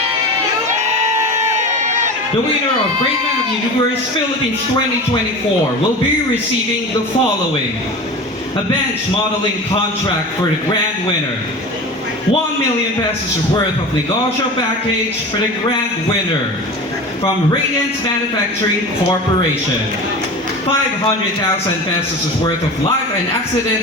The winner of Great Man of the Universe Philippines 2024 will be receiving the following: a bench modeling contract for the grand winner, 1 million pesos worth of negosyo package for the grand winner from Radiance Manufacturing Corporation, 500,000 pesos worth of life and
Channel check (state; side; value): normal; both; correlation 0.32